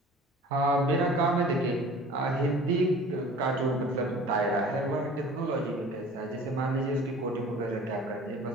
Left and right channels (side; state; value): both; normal; correlation 0.45